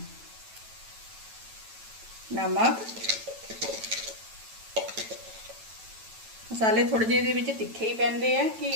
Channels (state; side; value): late; left; 9.0 ms